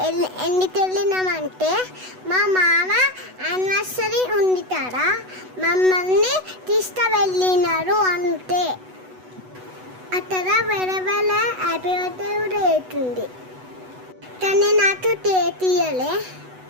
ఎందుకు వెళ్ళినామంటే మా మామ యానివర్సరీ ఉంది కదా, మమ్మల్ని తీసుకువెళ్ళినారు అంతే. అక్కడ వేరే హ్యాపీ బర్త్డే కూడా అవుతుంది, కానీ నాకు తీయలే.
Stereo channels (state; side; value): late; left; 8.0 ms